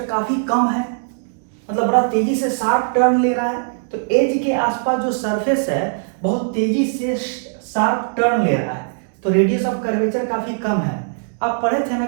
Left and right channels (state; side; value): silent; left; digital silence